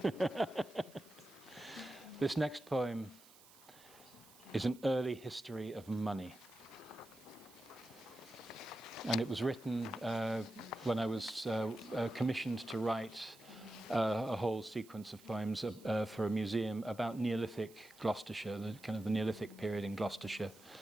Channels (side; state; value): right; noise; hiss, 23 dB below the sound